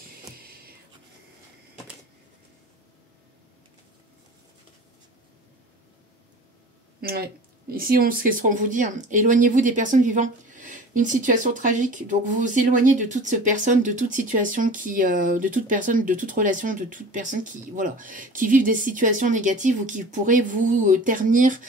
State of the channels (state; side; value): normal; both; correlation 0.40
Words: Ouais. Ici, ce qu'on vous dit, hein, éloignez-vous des personnes vivant une situation tragique. Donc, vous vous éloignez de toute personne, de toute situation, de toute personne, de toute relation, de toute personne qui vivent des situations négatives ou qui pourraient vous ternir